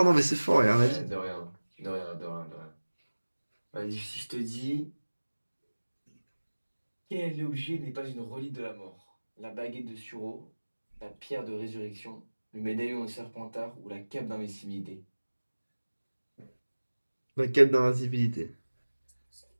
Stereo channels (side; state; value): both; inverted; correlation -1.00